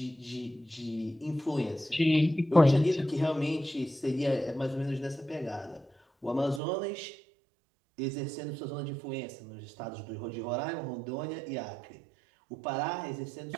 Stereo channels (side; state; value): left; drops out; at 6.6 s